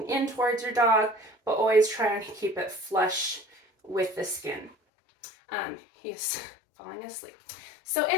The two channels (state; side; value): drops out; right; at 4.8 s